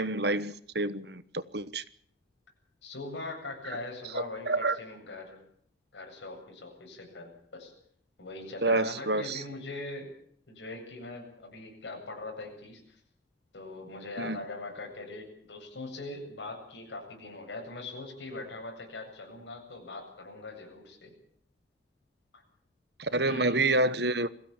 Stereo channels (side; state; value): both; normal; correlation -0.07